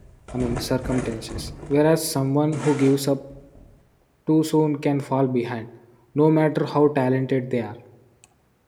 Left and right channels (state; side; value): identical; both; correlation 1.00